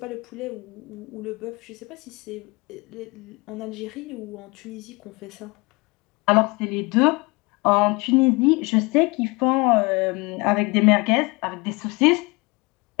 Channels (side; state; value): right; quieter; 26.3 dB